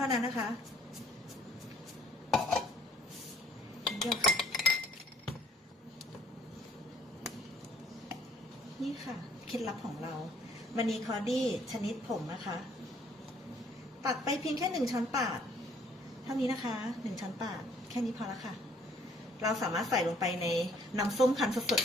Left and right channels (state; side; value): normal; both; correlation 0.60